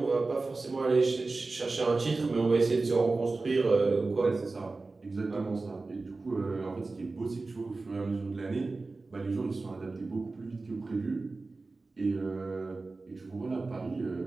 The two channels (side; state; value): left; quieter; 3.6 dB